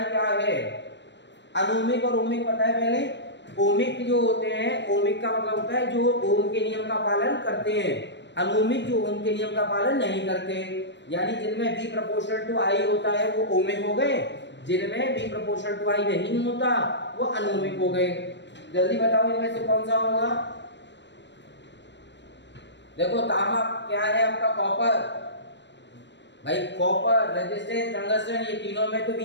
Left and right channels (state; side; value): late; right; 0.52 ms